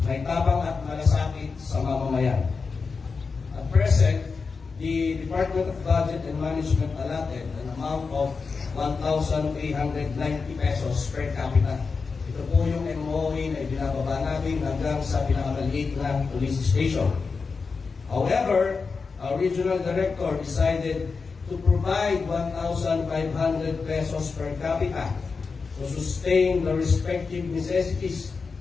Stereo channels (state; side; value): quieter; right; 4.8 dB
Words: may tabang at malasakit sa mamamayan. At present, the Department of Budget and Management allotted an amount of 1,890 pesos per capita. Ito po yung MOE na ibinababa natin hanggang sa pinakamaliit na police station. However, our regional director decided to provide 1,500 pesos per capita to sustain the respective necessities